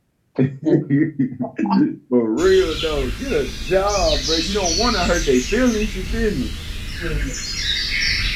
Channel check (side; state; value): both; identical; correlation 1.00